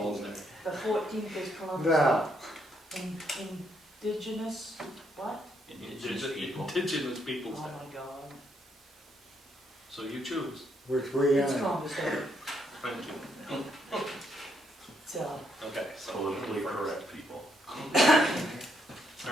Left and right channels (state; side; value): normal; both; correlation 0.75